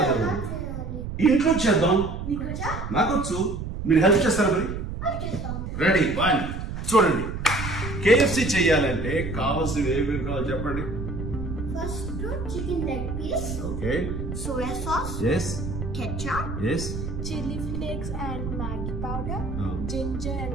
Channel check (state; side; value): noise; right; rumble, 6 dB below the sound